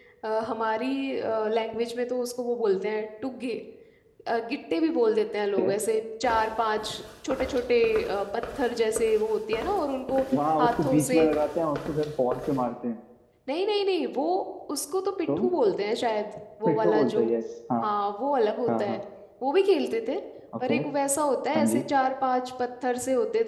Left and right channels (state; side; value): identical; both; correlation 1.00